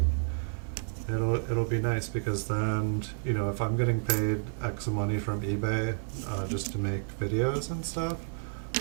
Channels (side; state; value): left; silent; digital silence